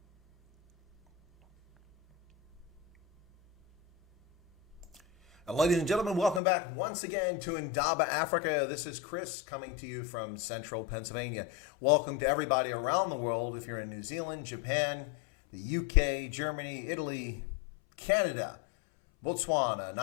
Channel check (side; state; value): right; drops out; at 6.4 s